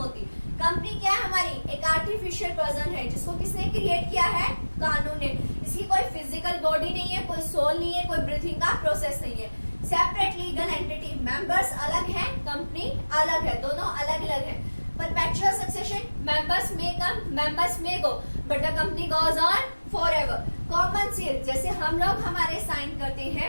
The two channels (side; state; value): both; inverted; correlation -1.00